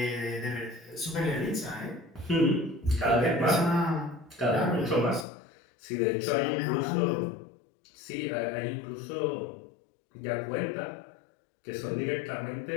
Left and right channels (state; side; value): drops out; right; at 5.2 s